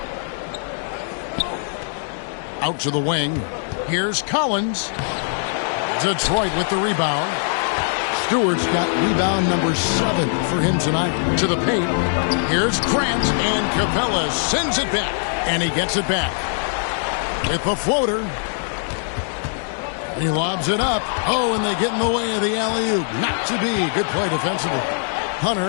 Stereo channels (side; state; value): right; silent; 61 dB below the other